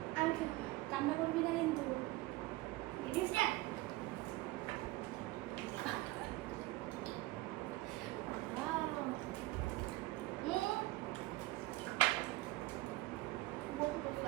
আমি খেতে কান্না করবি না কিন্তু। Ready start.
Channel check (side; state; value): left; quieter; 19.5 dB